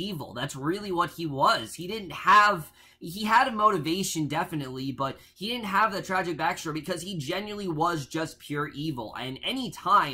That's really what he was. He didn't have... He had a motivation, definitely, but he didn't have that tragic backstory because he genuinely was just pure evil. And any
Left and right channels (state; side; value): identical; both; correlation 1.00